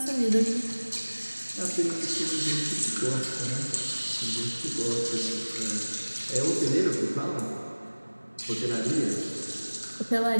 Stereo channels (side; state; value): both; inverted; correlation -1.00